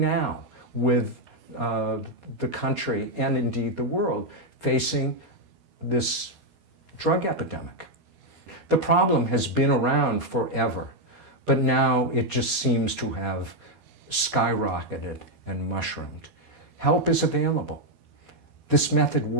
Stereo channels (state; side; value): late; left; 12 ms